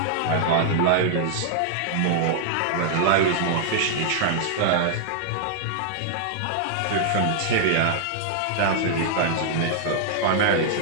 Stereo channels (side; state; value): both; different; correlation -0.01